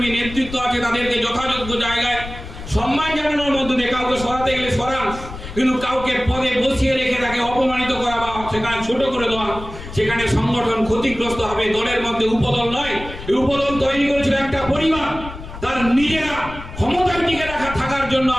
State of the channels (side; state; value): left; noise; rumble, 12 dB below the sound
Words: নেতৃত্ব আছে তাদেরকে যথাযোগ্য জায়গায় সম্মান জানানোর মধ্যে দিয়ে কাউকে সরাতে গেলে সরান, কিন্তু কাউকে পদে বসিয়ে রেখে তাকে অপমানিত করা বা সেখানে ছোট করে দেওয়া, সেখানে সংগঠন ক্ষতিগ্রস্ত হবে। দলের মধ্যে উপদল নয়, উপদল তৈরি করেছিল একটা পরিবার, তার নিজেরা ক্ষমতার টিকে রাখা থাকার জন্য